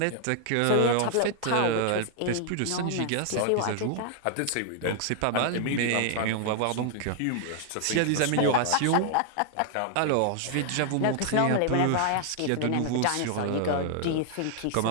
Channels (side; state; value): both; different; correlation 0.00